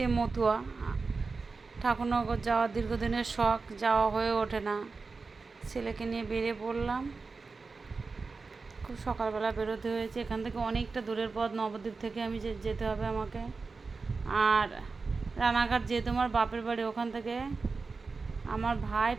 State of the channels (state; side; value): quieter; left; 4.3 dB